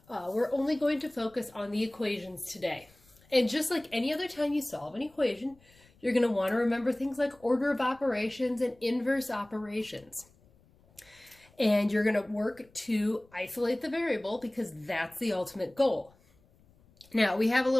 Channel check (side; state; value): left; noise; rumble, 30 dB below the sound